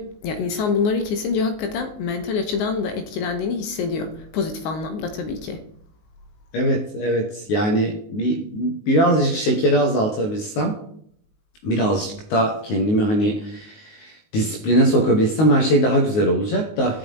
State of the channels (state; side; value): late; right; 19 ms